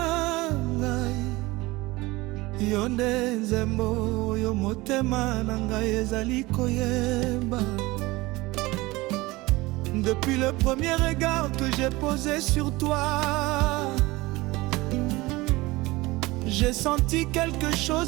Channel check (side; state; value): left; quieter; 21.0 dB